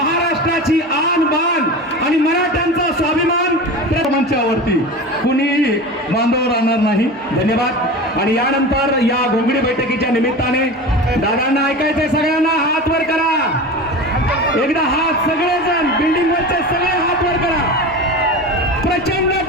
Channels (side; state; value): both; normal; correlation 0.30